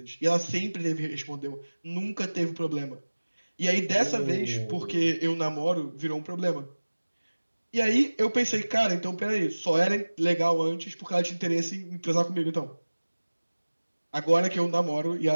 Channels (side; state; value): both; inverted; correlation -1.00